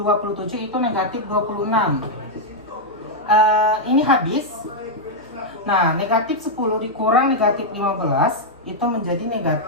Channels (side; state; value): left; noise; hum, 30 dB below the sound